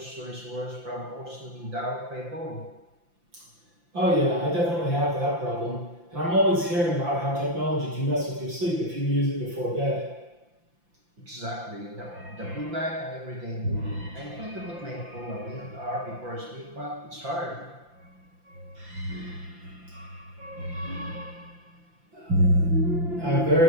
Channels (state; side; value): late; left; 5.8 ms